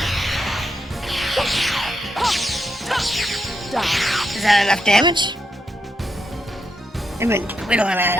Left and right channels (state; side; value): normal; both; correlation 0.82